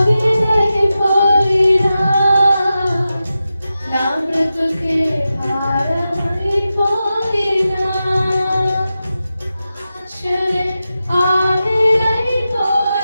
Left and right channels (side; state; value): both; inverted; correlation -0.92